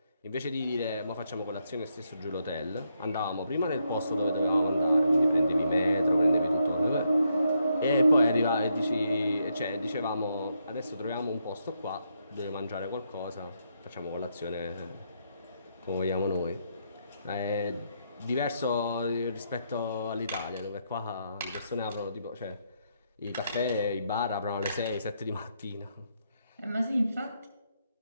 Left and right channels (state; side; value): inverted; both; correlation -0.78